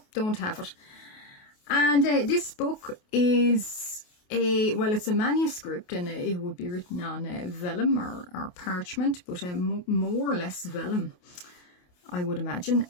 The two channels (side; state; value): right; late; 28 ms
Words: don't have it. And this book is it's a manuscript, and it would be written on vellum or parchment, but more or less vellum, I would imagine.